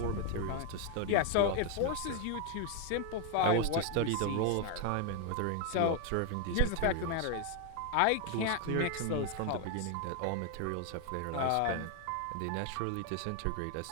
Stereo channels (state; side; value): different; both; correlation 0.01